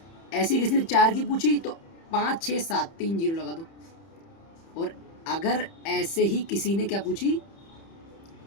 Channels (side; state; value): right; late; 30 ms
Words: ऐसी किसी ने 4 की पूछी तो 5, 6, 7, 3 0 लगा दो। और अगर ऐसे ही किसी ने क्या पूछी